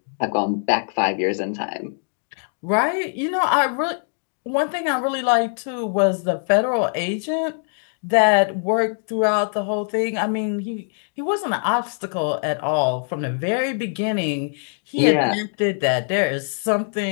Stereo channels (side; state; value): right; silent; 64 dB below the other